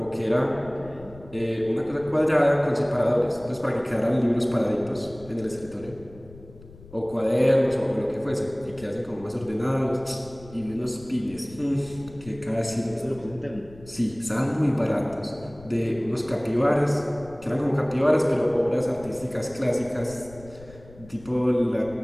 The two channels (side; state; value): left; noise; rumble, 20 dB below the sound